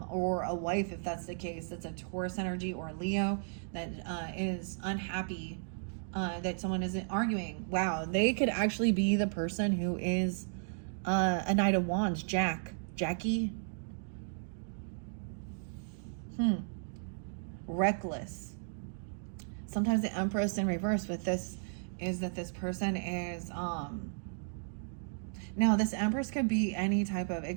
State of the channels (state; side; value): silent; left; digital silence